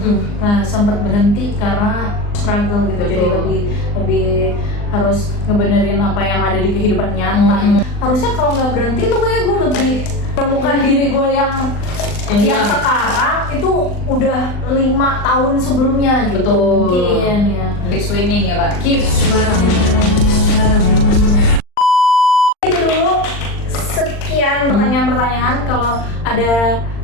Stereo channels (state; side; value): late; right; 39 ms